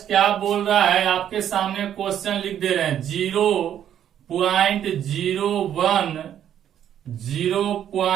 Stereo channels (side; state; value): left; quieter; 10.1 dB